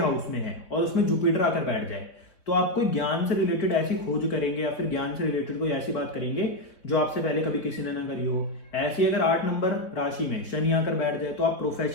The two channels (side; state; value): right; late; 4.1 ms